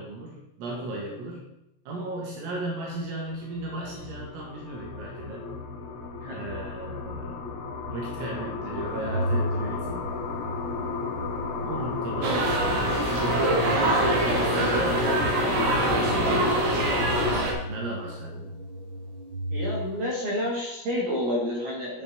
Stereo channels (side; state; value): left; late; 17 ms